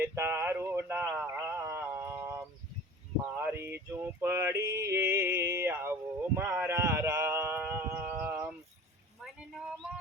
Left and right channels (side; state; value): both; normal; correlation 0.40